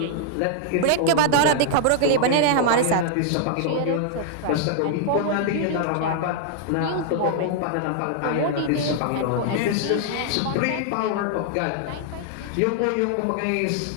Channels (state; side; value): different; both; correlation 0.00